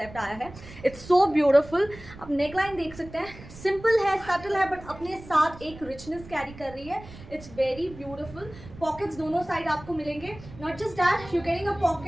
आया है. It's so beautiful. आप नेकलाइन देख सकते हैं, सिंपल है, सटल है, बट अपने साथ एक रिचनेस कैरी कर रही है. It's very beautiful. पॉकेट्स दोनों साइड आपको मिलेंगे. Not just that, you getting a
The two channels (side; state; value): right; noise; rumble, 17 dB below the sound